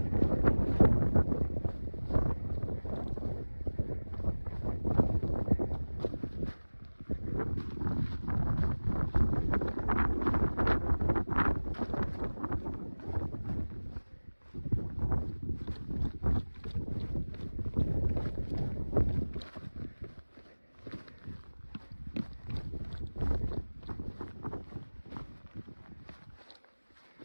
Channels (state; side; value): inverted; both; correlation -1.00